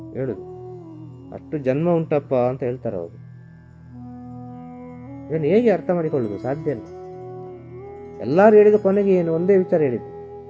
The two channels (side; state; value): both; identical; correlation 1.00